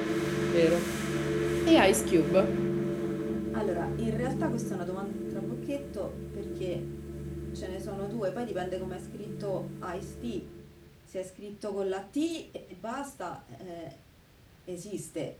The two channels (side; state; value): both; identical; correlation 1.00